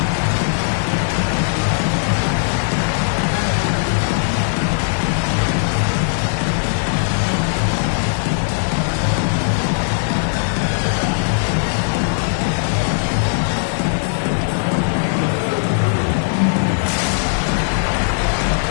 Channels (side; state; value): right; silent; 55 dB below the other